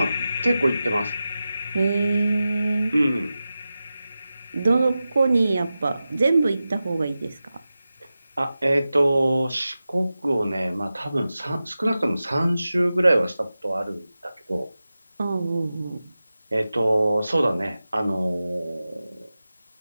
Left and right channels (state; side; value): inverted; both; correlation -0.94